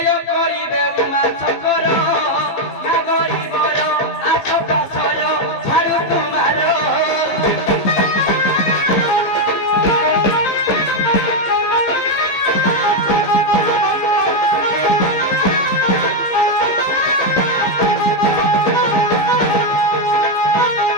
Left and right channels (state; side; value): late; right; 15 ms